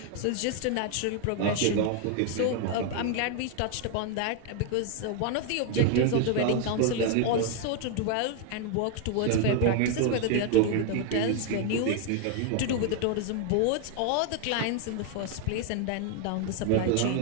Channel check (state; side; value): different; both; correlation 0.00